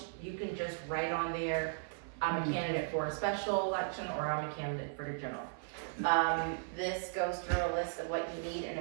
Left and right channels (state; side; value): silent; left; 53 dB below the other